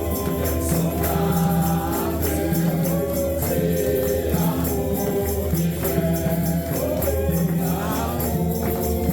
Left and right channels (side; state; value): both; identical; correlation 1.00